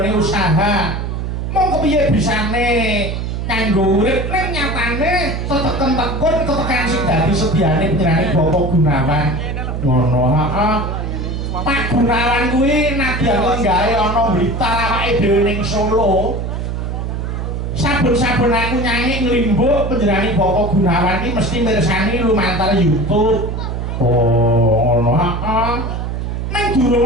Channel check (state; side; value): noise; right; hum, 3 dB below the sound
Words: usaha mong kepiye bisane kanggo urip ning nyatane teteken-tekun tetekan sing dadi sediane panjenenganing Bapak Gunawan ngono heeh Pak Gunawan kuwi nadyan gawe ana Blitar awake dhewe ning Solo saben-saben aku nyanyi nglimbuk panjenenganing Bapak Gunawan iki mesti mirsani lumantar YouTube oh ngono heeh nang